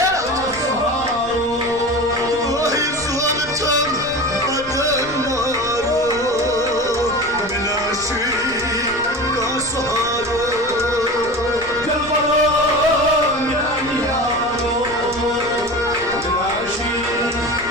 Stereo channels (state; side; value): noise; left; rumble, 18 dB below the sound